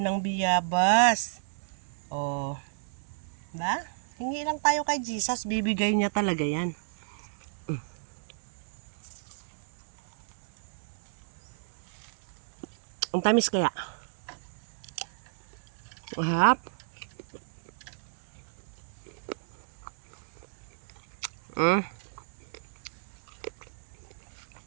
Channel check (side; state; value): left; silent; digital silence